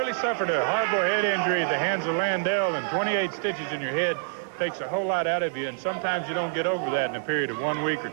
suffered a horrible head injury at the hands of Landell, and 28 stitches in your head takes a whole lot out of you, and sometimes you don't get over that in a period of 1 week or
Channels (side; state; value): left; silent; 58 dB below the other